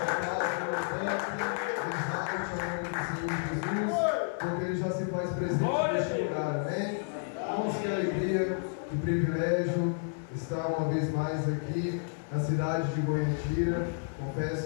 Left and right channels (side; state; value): right; silent; 57 dB below the other